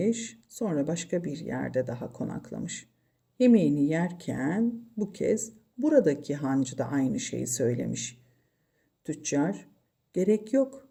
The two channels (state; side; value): identical; both; correlation 1.00